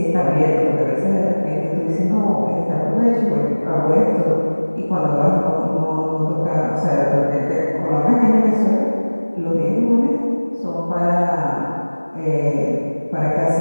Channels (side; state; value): both; inverted; correlation -1.00